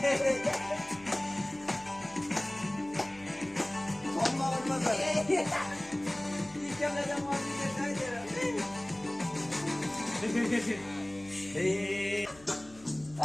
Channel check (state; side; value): noise; left; hum, 24 dB below the sound